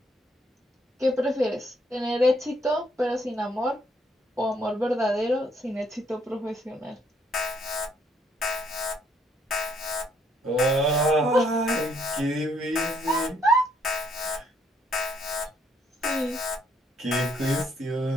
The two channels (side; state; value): both; normal; correlation 0.70